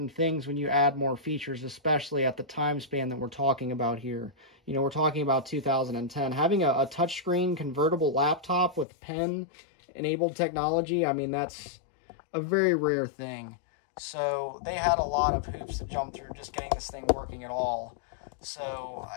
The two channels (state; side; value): drops out; right; at 8.8 s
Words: things when you add more features, especially at the time span that we're talking about here. You know, we're talking about 2010. Having a touchscreen convertible laptop with pen-enabled technology, I mean, that's a very rare thing. So they had a lot of hoops to jump through just getting this thing working at all. So,